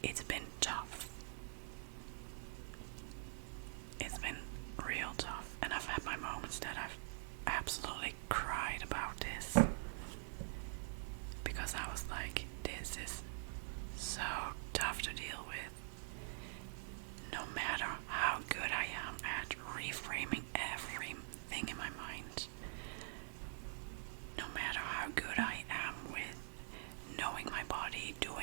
It's been tough. It's been real tough, and I've had my moments that I've absolutely cried about this, because I was like, this is so tough to deal with. No matter how good I am at reframing everything in my mind, no matter how good I am with knowing my body,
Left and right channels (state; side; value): silent; left; digital silence